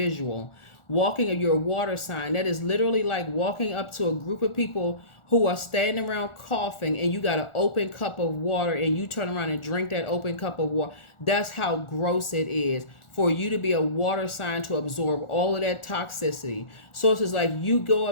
Walking of your water sign. That is literally like walking up to a group of people who are standing around coughing, and you got an open cup of water, and you turn around and drink that open cup of water. That's how gross it is for you to be a water sign, to absorb all of that toxicity. So it's just like you go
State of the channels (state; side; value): late; right; 1.4 ms